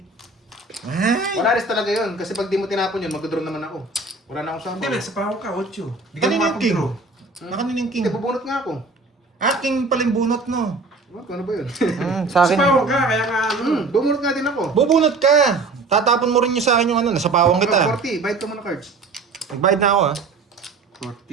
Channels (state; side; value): quieter; left; 3.7 dB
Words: Ay, Wala rin talaga yun. Kasi pag di mo tinapon yun, mag-draw naman ako. Wala na akong Hindi, sample. nasa pahaw ka, 8. Di ka kanina yung king. makapag-draw. Nakanin yung king. Hindi, bubunot nga ako. King pala yung bunot, no? What? Ano ba yun? Sa Sa akin. pahaw ka, kaya nga ano. Bubunot nga din ako. Bubunot ka. Tatapon mo rin yung sa akin yung ano, nasa pawang kita. 40. Bayad ka muna cards. Nagbayad na ako, ah.